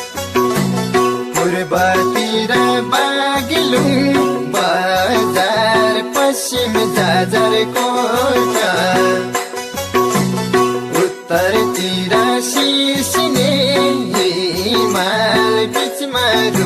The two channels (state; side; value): identical; both; correlation 1.00